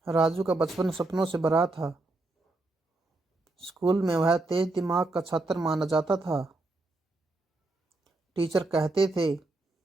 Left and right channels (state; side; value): quieter; left; 3.0 dB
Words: राजू का बचपन सपनों से भरा था। स्कूल में वह तेज दिमाग का छात्र माना जाता था। टीचर कहते थे,